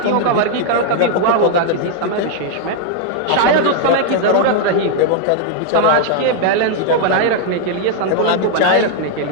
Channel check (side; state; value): both; different; correlation 0.00